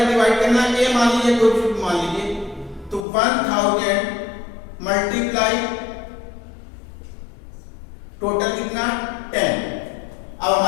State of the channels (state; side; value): drops out; right; at 3.1 s